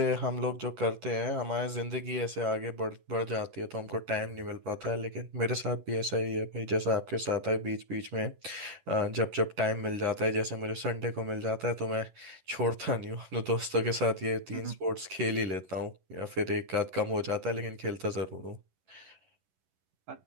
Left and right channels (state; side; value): late; left; 11 ms